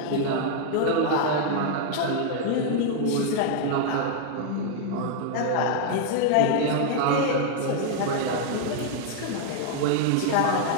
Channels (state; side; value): different; both; correlation 0.00